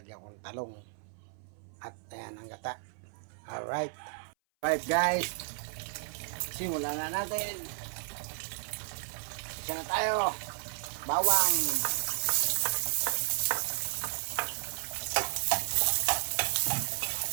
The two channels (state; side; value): silent; left; 56 dB below the other